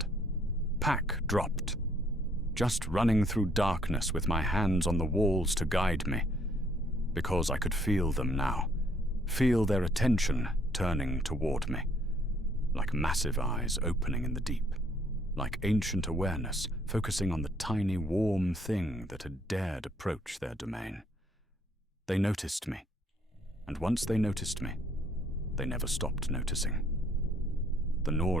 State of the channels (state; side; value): normal; both; correlation 0.65